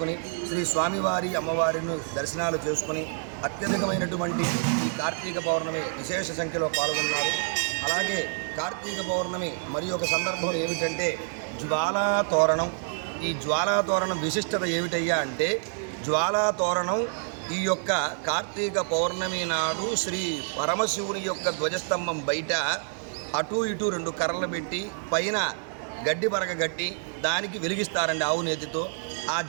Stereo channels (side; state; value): left; silent; 60 dB below the other